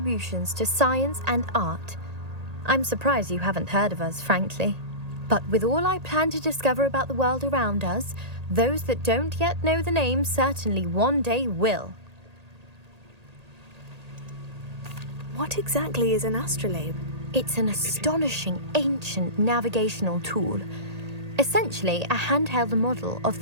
to science and art. I'm surprised you haven't heard of us, frankly. But with all I plan to discover about the world around us, those that don't yet know the name certainly one day will. What exactly is an astrolabe? It's an astonishing ancient navigational tool, essentially a handheld model of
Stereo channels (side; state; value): left; late; 1.8 ms